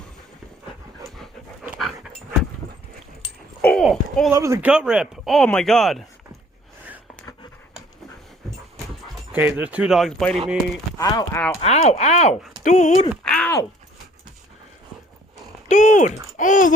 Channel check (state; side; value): normal; both; correlation 0.56